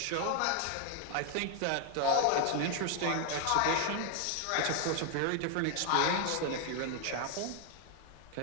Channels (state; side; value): different; both; correlation 0.00